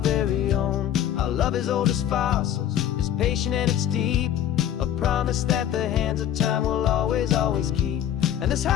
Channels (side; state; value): right; quieter; 10.6 dB